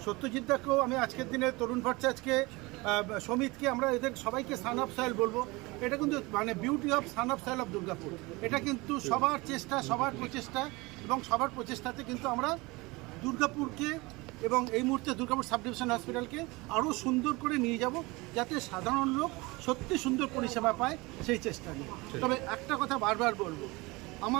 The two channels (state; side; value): quieter; left; 23.7 dB